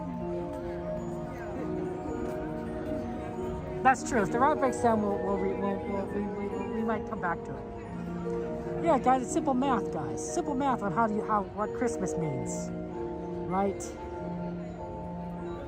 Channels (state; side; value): identical; both; correlation 1.00